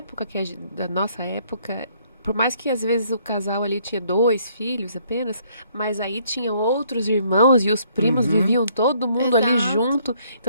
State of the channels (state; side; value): inverted; both; correlation -0.66